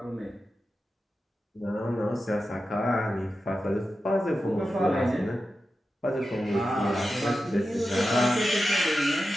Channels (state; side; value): normal; both; correlation 0.91